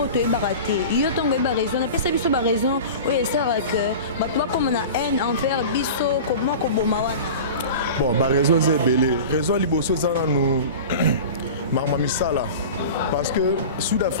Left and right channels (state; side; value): inverted; both; correlation -0.34